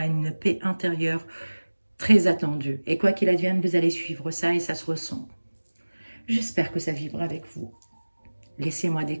une paix intérieure très attendue. Et quoi qu'il advienne, vous allez suivre ça et ça se ressent. J'espère que ça vibre avec vous. Laissez-moi des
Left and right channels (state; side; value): inverted; both; correlation -1.00